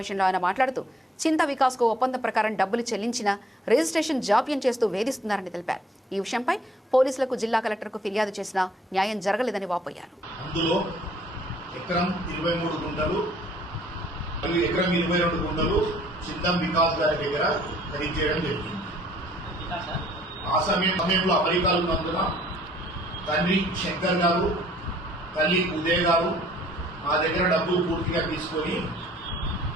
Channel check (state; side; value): normal; both; correlation 0.60